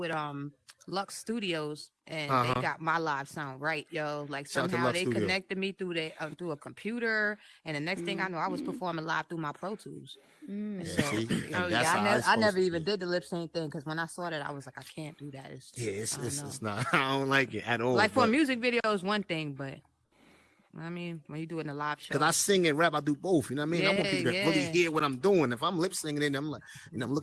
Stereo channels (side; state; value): both; identical; correlation 1.00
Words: Lux Studios and they got my live sound right, yo. Like Shout out to somehow Lux they Studio. connected me through a computer, and the next thing I know, I was performing live through my Pro Tools. And so, see? oh, That's how I it's never supposed to even did the lip sync thing because when I saw that, I was like, I can't do that. It's it's not. I don't like it at all. like for a but- music video is one thing, but I mean, when you do it in a live show, Cause I sing and rap, I do both. You know what I mean? I want people to really Yeah. hear what I'm doing. If I'm lip singing, and I'm like, you know, I'm